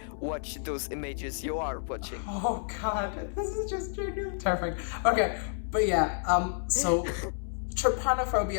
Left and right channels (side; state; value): right; silent; 58 dB below the other